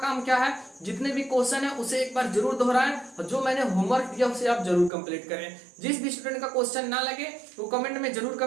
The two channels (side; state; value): left; drops out; at 4.9 s